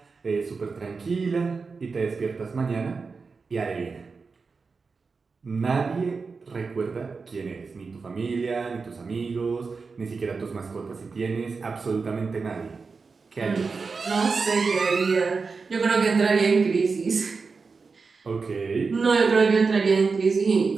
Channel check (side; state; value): left; quieter; 4.6 dB